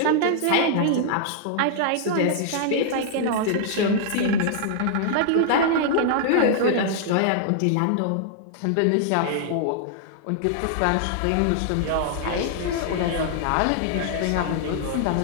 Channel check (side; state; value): both; different; correlation -0.01